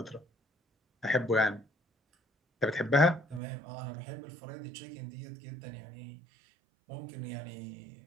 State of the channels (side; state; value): left; drops out; at 3.4 s